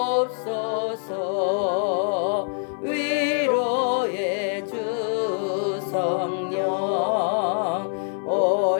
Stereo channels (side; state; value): right; silent; digital silence